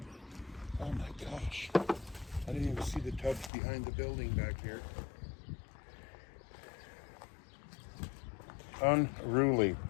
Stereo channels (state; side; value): drops out; right; at 3.5 s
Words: Oh my gosh. I didn't even see the tubs behind the building back here. Unruly.